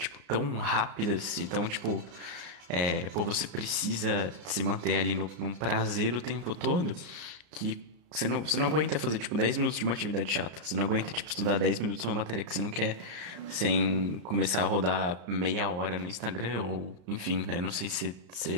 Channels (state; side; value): late; left; 34 ms